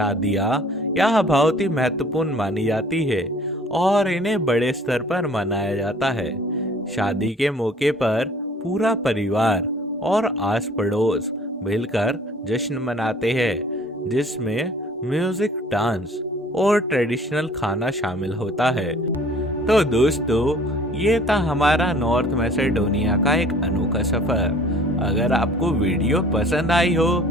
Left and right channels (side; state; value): both; normal; correlation 0.51